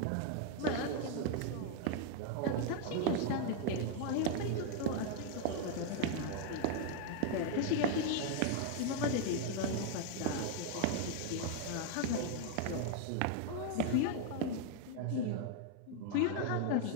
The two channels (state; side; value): different; both; correlation 0.00